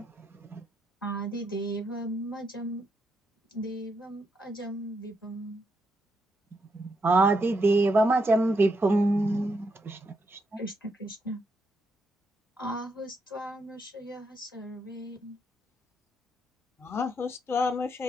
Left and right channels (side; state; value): both; normal; correlation 0.80